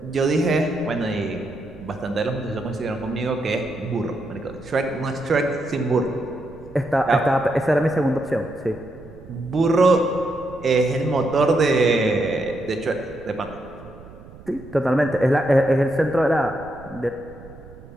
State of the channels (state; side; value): noise; right; rumble, 19 dB below the sound